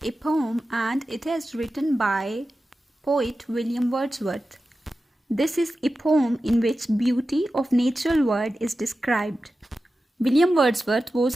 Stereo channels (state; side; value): normal; both; correlation 0.93